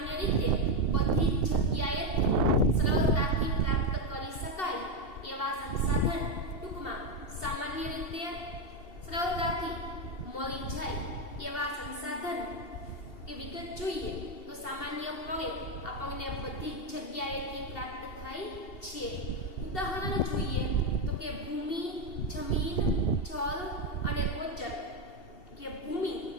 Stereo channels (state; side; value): late; right; 2.7 ms